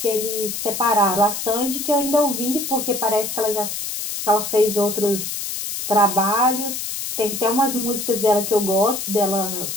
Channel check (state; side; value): noise; left; hiss, 5 dB below the sound